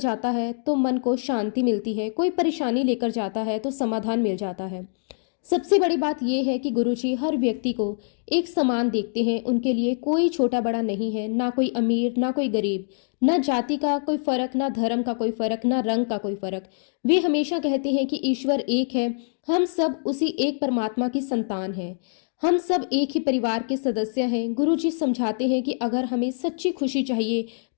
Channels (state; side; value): silent; right; digital silence